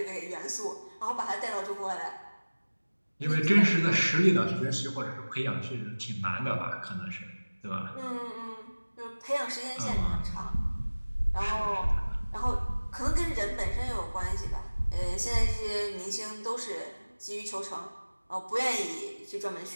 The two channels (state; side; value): inverted; both; correlation -1.00